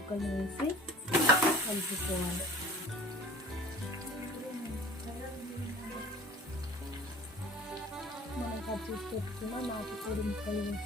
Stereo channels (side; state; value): both; normal; correlation 0.44